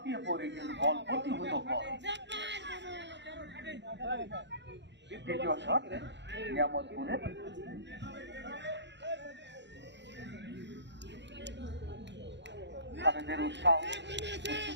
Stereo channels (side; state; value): left; late; 0.52 ms